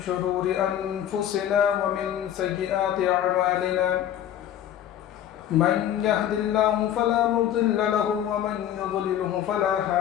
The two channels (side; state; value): right; quieter; 10.8 dB